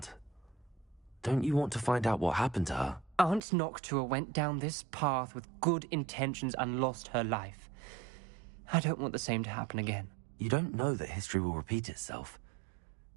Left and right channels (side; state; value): left; drops out; at 3.4 s